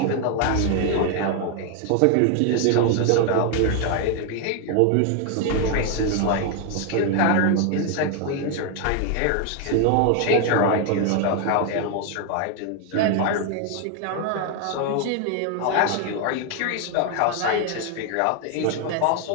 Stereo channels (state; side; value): different; both; correlation 0.01